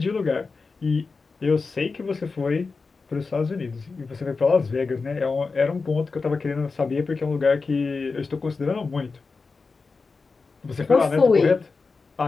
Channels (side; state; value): right; quieter; 4.3 dB